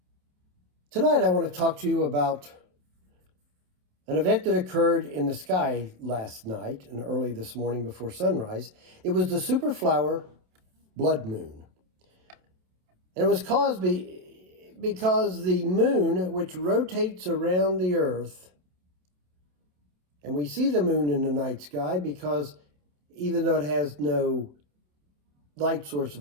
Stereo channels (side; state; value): left; late; 27 ms